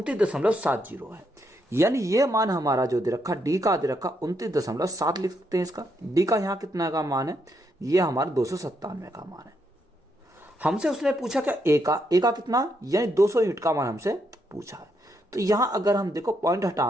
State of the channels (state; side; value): normal; both; correlation 0.78